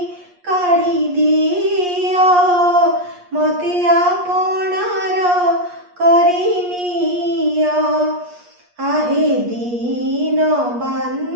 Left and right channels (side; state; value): left; late; 8.4 ms